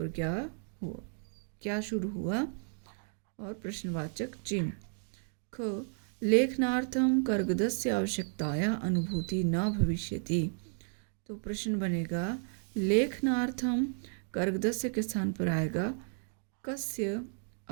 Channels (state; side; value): silent; left; 56 dB below the other